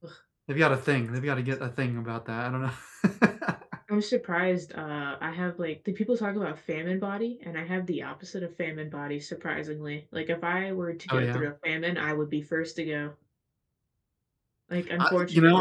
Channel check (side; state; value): both; identical; correlation 1.00